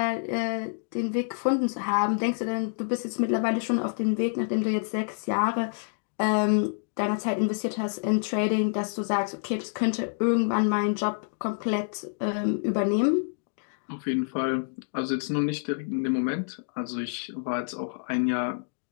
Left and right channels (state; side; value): silent; right; digital silence